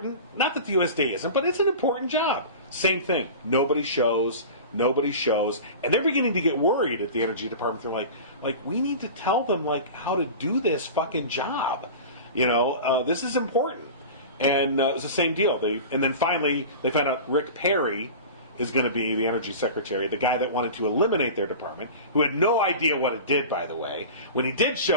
not that the USDA isn't, but it's an important job. Same thing. Nobody shows, and they're beginning to get worried at the Energy Department. They're like we need to tell them how to do this fucking job. This is important. And it was the same deal. And then finally they found out Rick Perry is going to be the Energy Secretary, the guy that wanted to eliminate their department, who had no idea what it did, by the way. When he did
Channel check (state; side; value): inverted; both; correlation -0.34